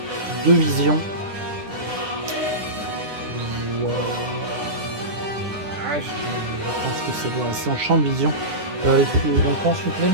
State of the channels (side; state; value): left; late; 9.7 ms